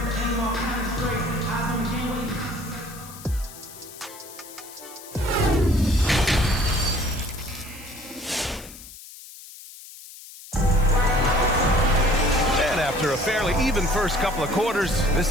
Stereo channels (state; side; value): noise; left; hiss, 17 dB below the sound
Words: After a fairly even first couple of quarters, this